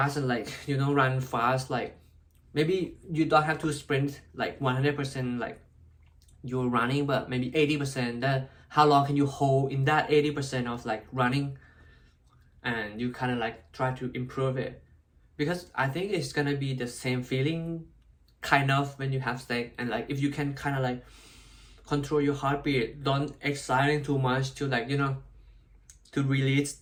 and like, you know, run fast. Like maybe you don't have to sprint like 100% like you're running, but maybe 80%, that how long can you hold in that 80% of like running, and you kind of like try to improve it. Because I think it's gonna be the same feeling kind of when you have sex. And like if you can kind of like control your heartbeat, don't exciting too much to like, you know, to release,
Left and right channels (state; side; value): identical; both; correlation 1.00